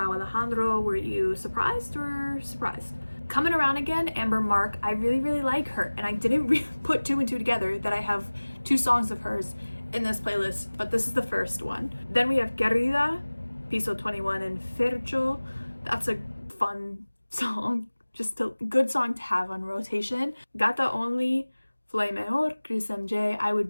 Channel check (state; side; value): inverted; both; correlation -1.00